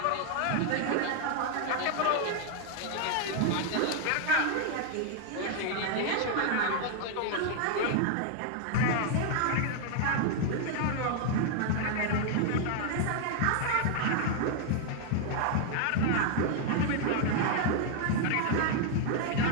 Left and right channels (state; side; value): different; both; correlation 0.00